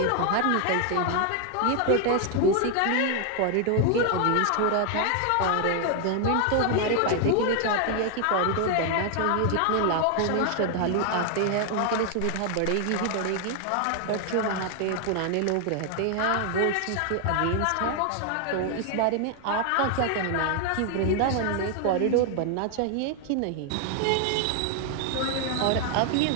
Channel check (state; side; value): different; both; correlation 0.00